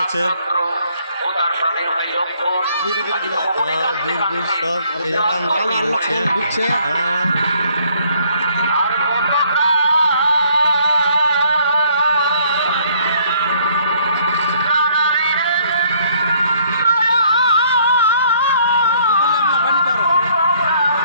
আছে বীর বীর সব ঢুকছে। হ্যাঁ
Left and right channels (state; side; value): inverted; both; correlation -0.63